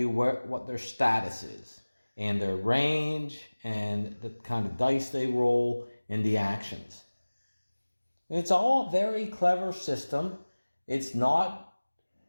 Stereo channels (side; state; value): both; inverted; correlation -1.00